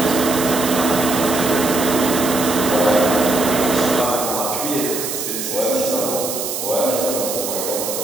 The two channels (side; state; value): right; noise; hiss, 4 dB below the sound